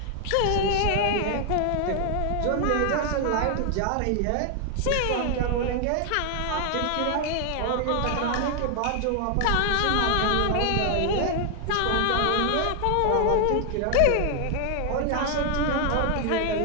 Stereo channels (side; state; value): both; different; correlation 0.00